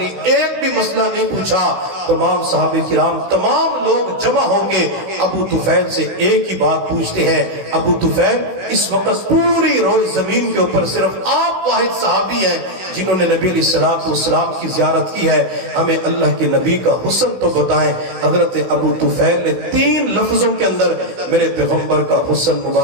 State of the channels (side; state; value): left; late; 16 ms